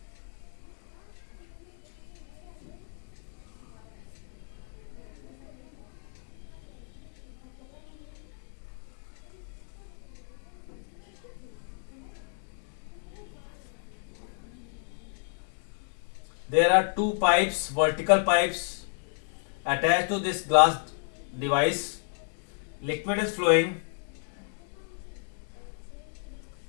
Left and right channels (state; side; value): silent; right; 57 dB below the other